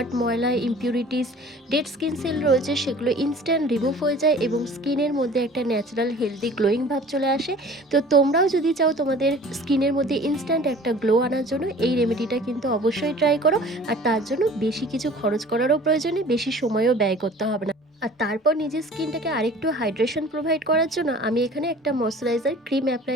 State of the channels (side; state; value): both; normal; correlation 0.46